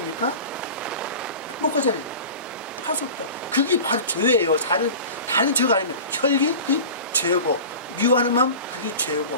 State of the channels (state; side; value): inverted; both; correlation -0.35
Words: 못 가잖아요. 갈 수 없다. 그게 바로 죄예요. 다른 죄가 아니면 혈기, 그게 죄고, 미워하는 마음, 그게